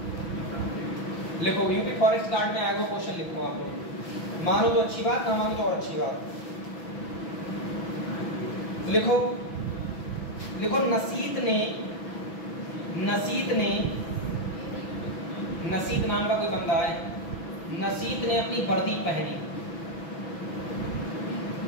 लिखो, यूपी फॉरेस्ट गार्ड में आया वो क्वेश्चन लिखो आप लोग, मानो तो अच्छी बात, ना मानो तो और अच्छी बात। लिखो लिखो, नसीत नाम का कोई बंदा है, नसीत ने अपनी वर्दी पहनी,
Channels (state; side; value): late; right; 6.1 ms